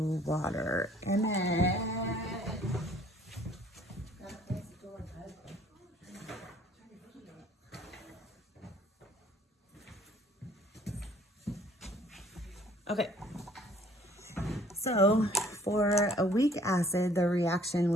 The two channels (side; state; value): both; normal; correlation 0.57